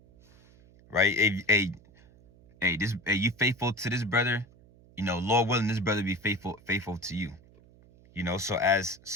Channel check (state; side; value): noise; right; hum, 26 dB below the sound